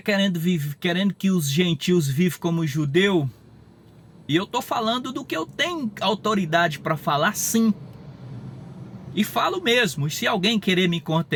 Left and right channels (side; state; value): both; identical; correlation 1.00